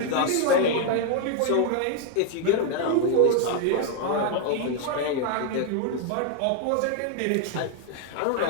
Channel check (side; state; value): both; different; correlation 0.00